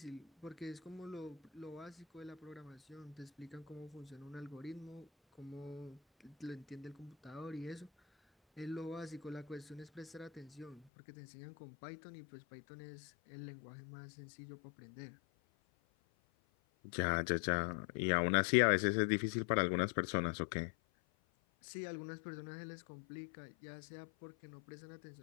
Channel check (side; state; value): right; drops out; at 10.9 s